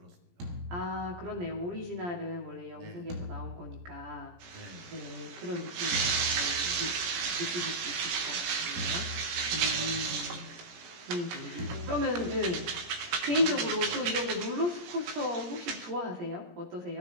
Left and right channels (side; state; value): left; late; 17 ms